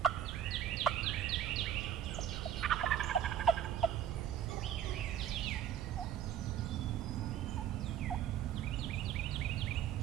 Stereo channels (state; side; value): quieter; left; 9.9 dB